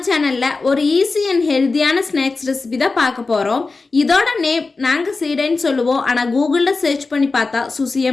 சேனலில் ஒரு ஈஸி அண்ட் ஹெல்த்தியான ஸ்நாக்ஸ் ரெசிபி தான் பார்க்க போகிறோம். இதோட நேம் நாங்கள் சீடைன்னு சொல்லுவோம், ஆனால் கூகுளில் சர்ச் பண்ணி பார்த்தா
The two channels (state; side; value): quieter; right; 3.9 dB